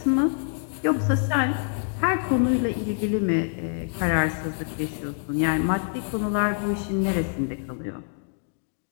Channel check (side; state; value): right; silent; digital silence